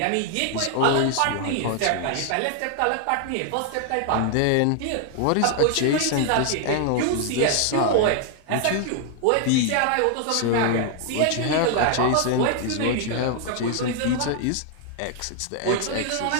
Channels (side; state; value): both; different; correlation 0.00